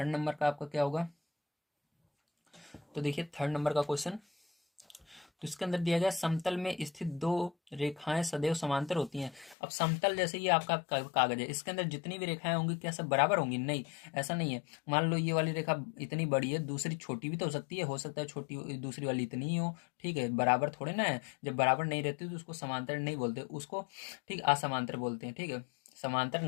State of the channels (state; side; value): drops out; right; at 9.6 s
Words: नंबर का आपका क्या होगा। तो देखिए थर्ड नंबर का क्वेश्चन, तो इसके अंदर दिया गया, समतल में स्थित दो रेखाएं सदैव समांतर होती हैं। अब समतल जैसे ये आपका कागज है, इसके अंदर जितनी भी रेखाएं होंगी क्या सब बराबर होंगी, नहीं, ऐसा नहीं है। मान लो ये वाली रेखा इतनी बड़ी है, दूसरी छोटी भी तो हो सकता है छोटी दूसरी वाली इतनी ही हो। ठीक है, बराबर थोड़े ना है, जब बराबर नहीं रहती तो उसको समांतर नहीं बोलते, उसको ठीक असमांतर बोलते हैं। ठीक है, समांतर